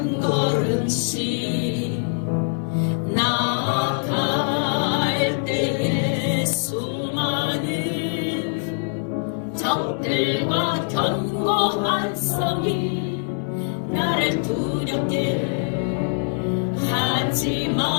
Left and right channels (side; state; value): right; silent; 63 dB below the other